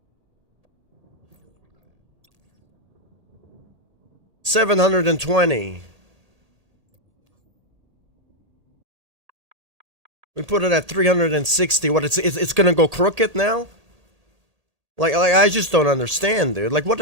$720. We put it at 360. What, it's gonna go crooked now? Like I just don't understand, dude. Like, what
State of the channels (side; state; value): left; late; 1.8 ms